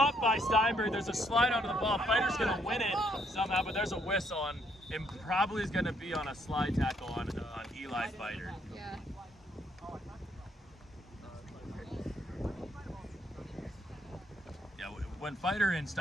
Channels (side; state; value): both; normal; correlation 0.70